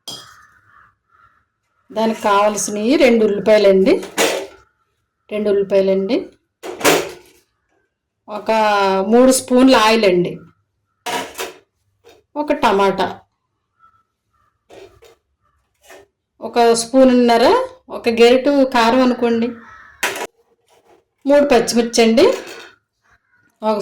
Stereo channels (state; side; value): identical; both; correlation 1.00